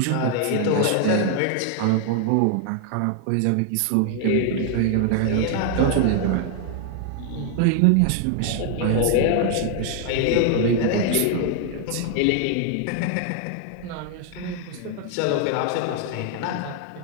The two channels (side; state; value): both; different; correlation 0.00